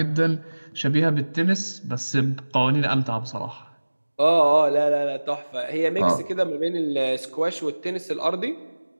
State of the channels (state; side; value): inverted; both; correlation -1.00